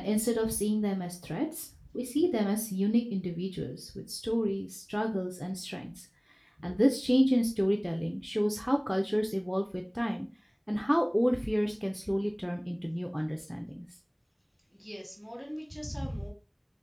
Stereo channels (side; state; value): both; identical; correlation 1.00